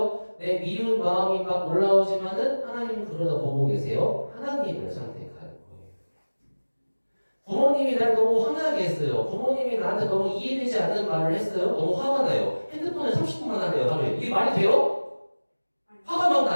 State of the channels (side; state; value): both; inverted; correlation -1.00